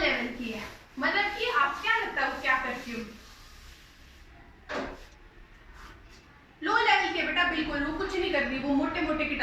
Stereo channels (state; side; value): identical; both; correlation 1.00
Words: की है, मतलब कि आप क्या लगता है वो क्या करती हो। लो लेवल के बेटा बिल्कुल वो कुछ नहीं कर रही, वो मोटे मोटे